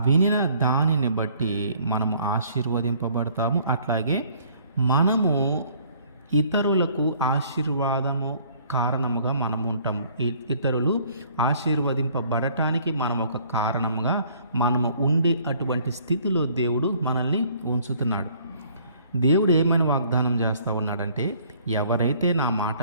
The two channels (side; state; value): both; inverted; correlation -0.58